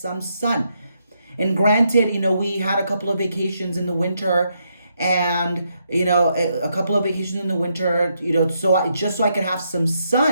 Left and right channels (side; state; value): both; inverted; correlation -0.79